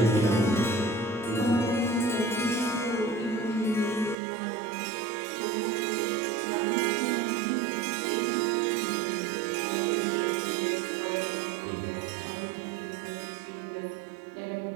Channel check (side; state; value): left; drops out; at 4.2 s